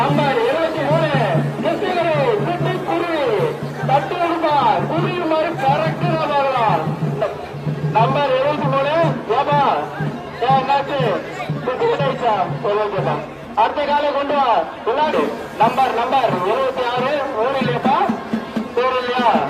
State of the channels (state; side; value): identical; both; correlation 1.00